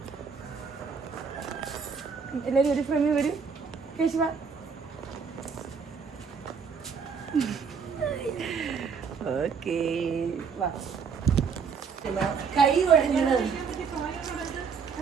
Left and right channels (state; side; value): quieter; left; 5.9 dB